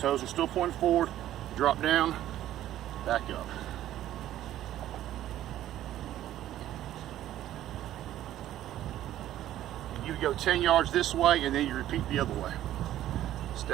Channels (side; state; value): left; quieter; 12.9 dB